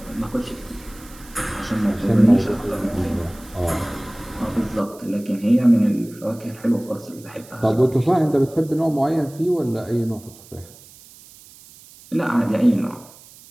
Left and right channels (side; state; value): right; noise; hiss, 22 dB below the sound